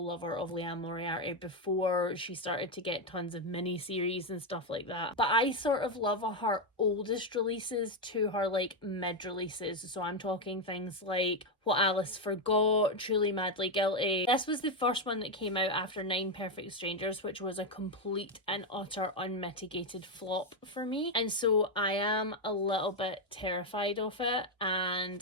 lover of Liane Moriarty before she started to get tons of mini-series and stuff like that. But I sort of love her oldest releases to her like mid-releases. So I'm talking things like What Alice Forgot, Truly Madly Guilty. This was the first one that came out after 9 Perfect Strangers, which was a complete and utter unmitigated flop for me. And so I am a little bit terrified of it,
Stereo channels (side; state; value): both; normal; correlation 0.05